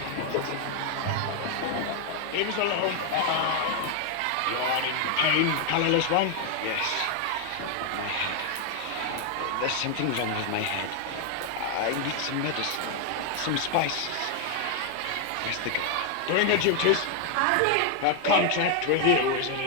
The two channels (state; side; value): different; both; correlation 0.00